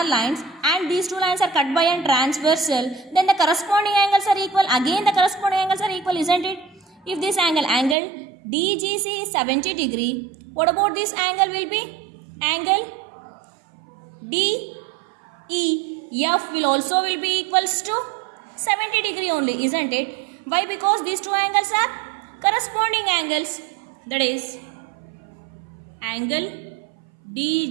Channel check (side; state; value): left; drops out; at 8.0 s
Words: lines and these two lines are cut by a transversal. Then the corresponding angles are equal. Again the corresponding angles are equal, isn't it? If this angle DGC is 70 degree, what about this angle will be? Angle DEF will also be equals to 70 degree only, isn't it? Why? Because these two angles are corresponding angles. That is angle